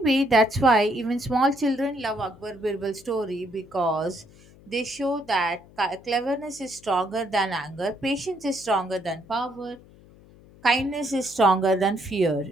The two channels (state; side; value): noise; left; hum, 24 dB below the sound